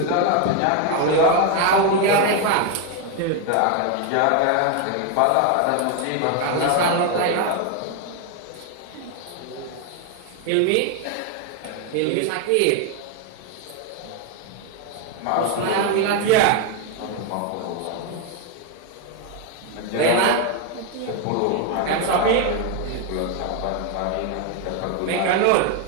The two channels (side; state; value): both; different; correlation 0.01